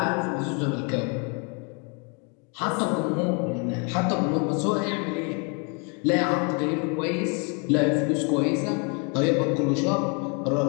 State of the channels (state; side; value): quieter; right; 35.3 dB